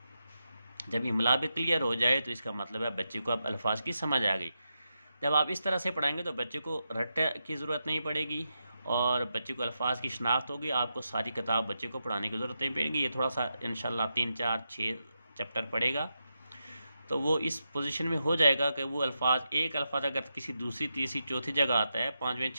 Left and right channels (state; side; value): inverted; both; correlation -0.87